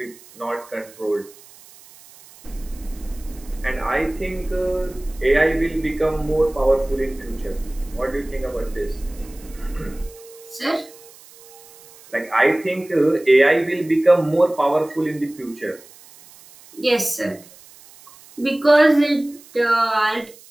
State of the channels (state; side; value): noise; right; hiss, 23 dB below the sound